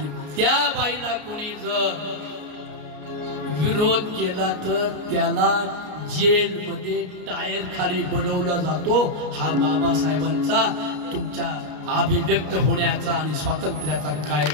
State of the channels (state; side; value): late; left; 33 ms